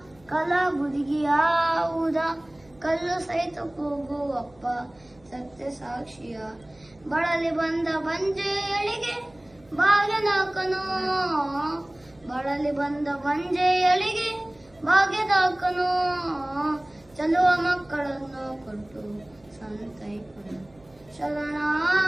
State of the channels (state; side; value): noise; right; hum, 29 dB below the sound